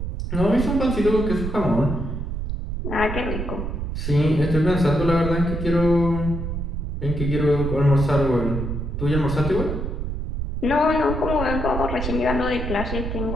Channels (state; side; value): noise; right; rumble, 4 dB below the sound